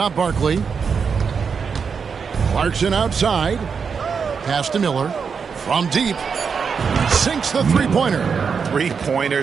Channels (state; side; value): quieter; left; 6.0 dB